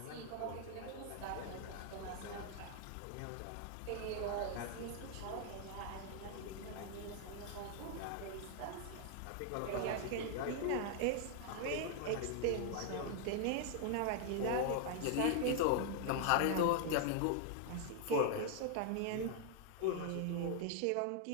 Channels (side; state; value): both; different; correlation 0.00